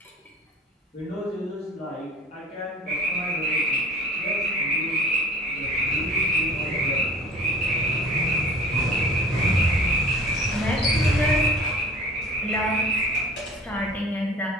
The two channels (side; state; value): both; normal; correlation 0.44